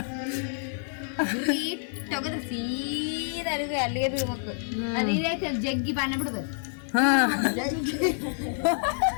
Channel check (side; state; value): right; silent; digital silence